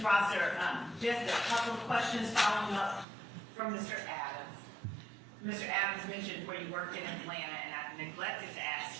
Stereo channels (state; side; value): drops out; left; at 3.1 s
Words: Prosser, just a couple of questions following up from Mr. Adams. Mr. Adams mentioned where you worked in Atlanta, and I neglected to